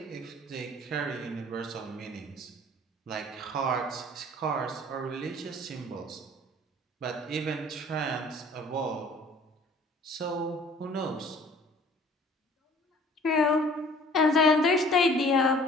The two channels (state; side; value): normal; both; correlation 0.52